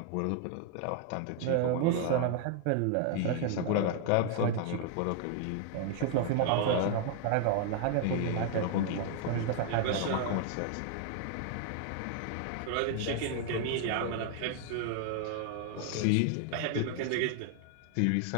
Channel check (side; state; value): both; different; correlation 0.00